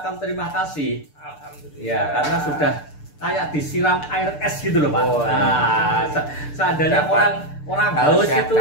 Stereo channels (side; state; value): right; late; 6.8 ms